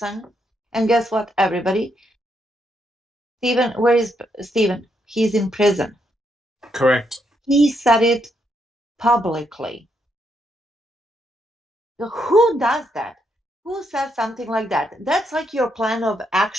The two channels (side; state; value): both; normal; correlation 0.78